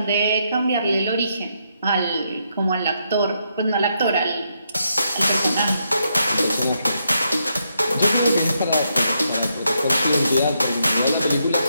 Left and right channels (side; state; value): both; inverted; correlation -0.79